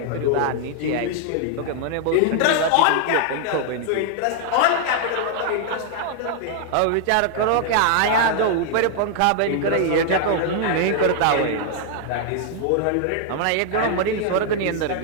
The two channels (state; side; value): different; both; correlation 0.00